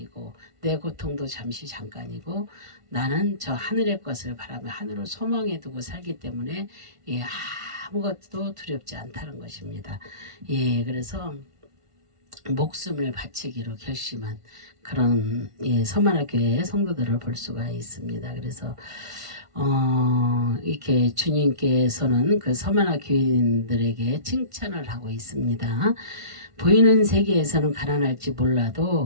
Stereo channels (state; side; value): late; left; 1.5 ms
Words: 내 고통도 잠시 잠깐이고 나는 저 하늘의 것을 바라며 하늘을 소망해 두고 살기 때문에 예, 아무것도 두렵지 않다는 것입니다. 예, 그래서 목숨을 바치기로 결심한 그런 예, 서머나 교회의 성도들을 볼 수가 있습니다. 그래서 이렇게 주님께서는 그 서머나 교인들에게 칭찬을 하고 있습니다. 보이는 세계에서는 가난할지